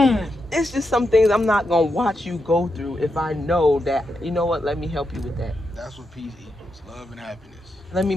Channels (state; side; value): normal; both; correlation 0.85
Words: It's just some things I'm not going to watch you go through if I know that, you know what, let me help you with that. That's what peace equals, love and happiness. Let me